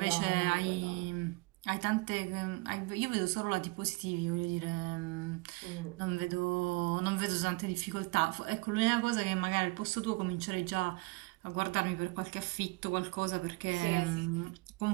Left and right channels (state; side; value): quieter; left; 25.6 dB